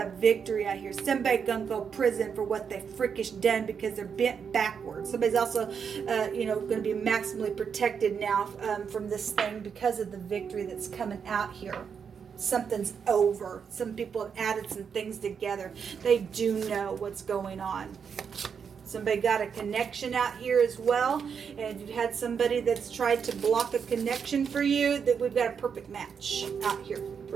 victory out here. Somebody gonna go prison for what they freakish done because they're bent backwards. Somebody's also, gonna be maximally protected now from this thing because of the victory that's coming out here. Something's over. Some people have added some things together. They do know what's going on. Somebody got a connection out here as well. And if you've had somebody that's tried to block a connection for you, that we've got a perfect match out here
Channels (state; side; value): quieter; left; 6.7 dB